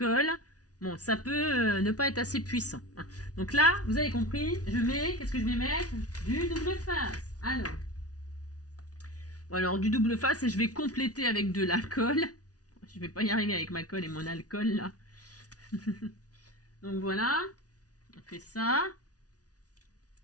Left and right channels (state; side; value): late; right; 0.68 ms